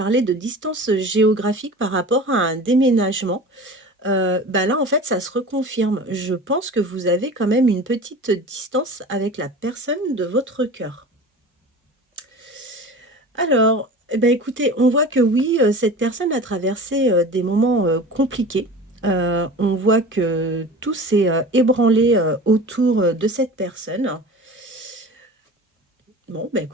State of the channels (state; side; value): normal; both; correlation 0.36